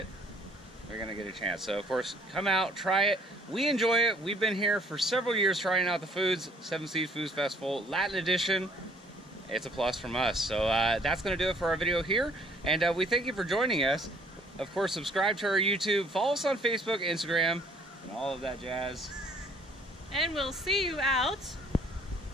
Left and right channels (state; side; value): normal; both; correlation 0.59